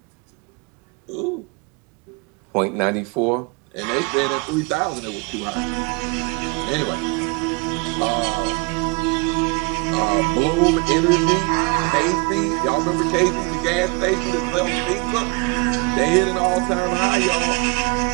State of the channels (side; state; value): left; quieter; 28.9 dB